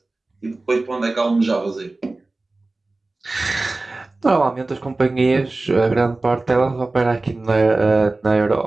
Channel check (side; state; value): left; quieter; 3.2 dB